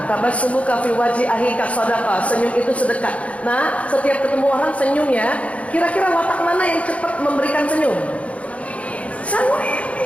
tabassumuka fi wajhi akhika shadaqah, senyum itu sedekah. Nah, setiap ketemu orang senyum ya. Kira-kira watak mana yang cepat memberikan senyum?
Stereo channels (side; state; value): right; late; 0.065 ms